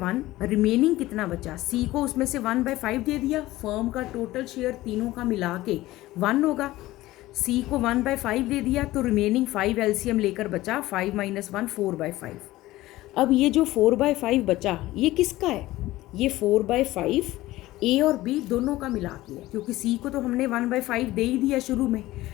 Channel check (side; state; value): right; quieter; 17.2 dB